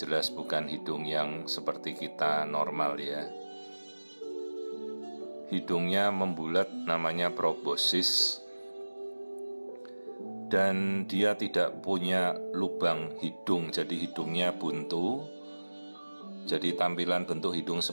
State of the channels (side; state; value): both; inverted; correlation -1.00